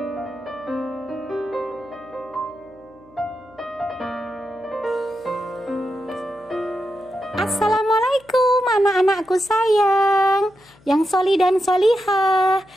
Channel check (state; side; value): noise; left; hum, 28 dB below the sound